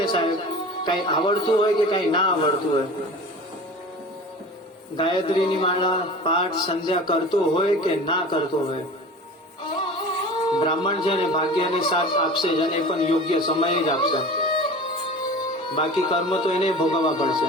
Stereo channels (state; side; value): normal; both; correlation 0.38